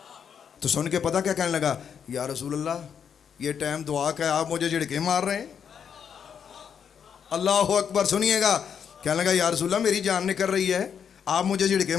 تو سن کے پتہ کیا کہنے لگا؟ یا رسول اللہ یہ ٹائم دعا کا ہے، آپ مجھے جھڑکے مار رہے ہیں؟ اللہ اکبر۔ سنیے گا، کہنے لگا یا رسول اللہ میری جان نکل رہی ہے، آپ مجھے جھڑکے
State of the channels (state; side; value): quieter; right; 7.6 dB